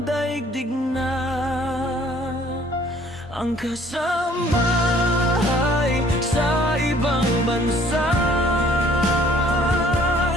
daigdig na. Ang kasambahay sa ibang bansa,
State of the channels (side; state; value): both; normal; correlation 0.57